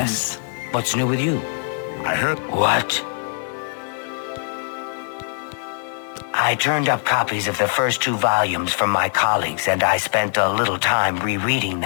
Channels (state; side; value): silent; right; digital silence